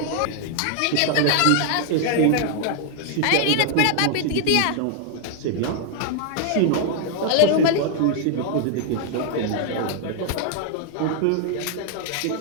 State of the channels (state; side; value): different; both; correlation 0.00